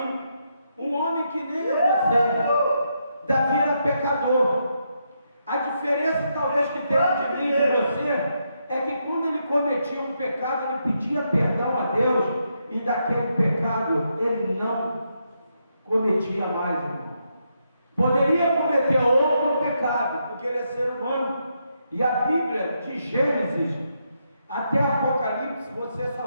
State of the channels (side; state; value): both; inverted; correlation -0.80